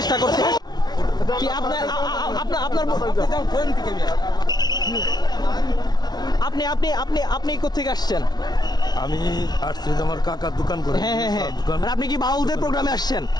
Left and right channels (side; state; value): right; late; 0.19 ms